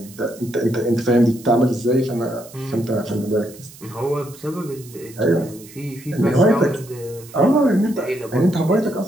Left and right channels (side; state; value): right; noise; hiss, 20 dB below the sound